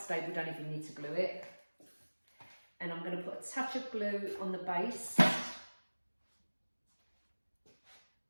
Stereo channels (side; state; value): both; inverted; correlation -1.00